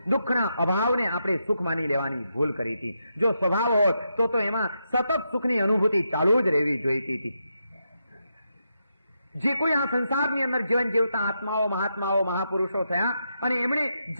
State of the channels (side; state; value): both; inverted; correlation -0.83